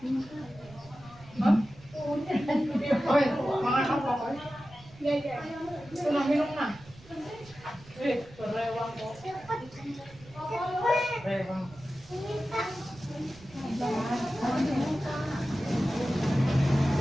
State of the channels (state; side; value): noise; right; rumble, 22 dB below the sound